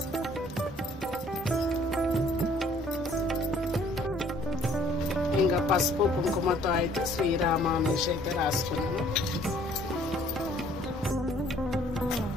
ఇంకా పసుపు కుంకుమతో అయితే శ్రీరామ అనేసి అయితే రాసుకున్నాను.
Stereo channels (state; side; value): normal; both; correlation 0.59